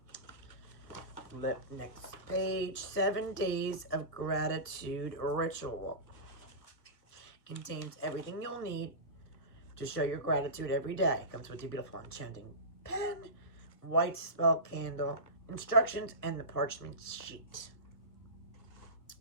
Flip next page. 7 Days of Gratitude Ritual. Contains everything you'll need to show your gratitude every day. Comes with your beautiful enchanting pen, white spell candle, instructions, and the parchment sheet.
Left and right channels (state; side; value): late; right; 1.6 ms